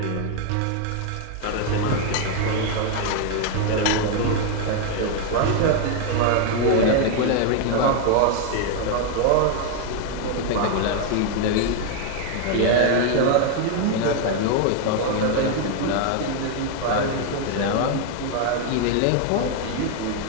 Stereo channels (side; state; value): both; different; correlation 0.01